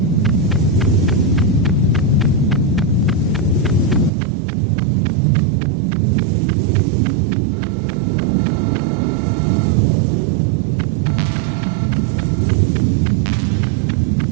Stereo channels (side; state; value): left; drops out; at 4.1 s